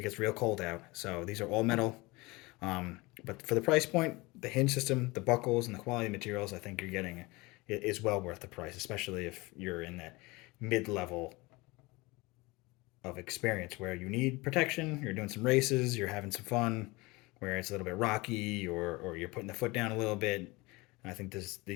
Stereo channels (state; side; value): quieter; right; 23.5 dB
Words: it gets real cold out. So these are all metal. But for the price point, the hinge system, the buckles, and the quality materials, I think you're getting is well worth the price, especially if you're in that mid-level of experience where you need protection, you're doing some races, you're having some fun, where it's a little bit rocky or you're putting the foot down a little bit. I think